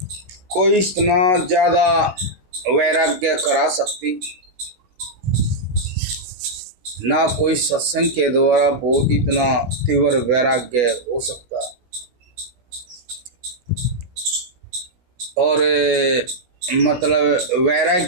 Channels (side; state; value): left; late; 16 ms